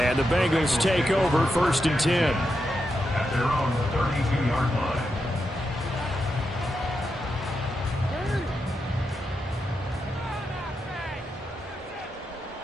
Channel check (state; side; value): normal; both; correlation 0.86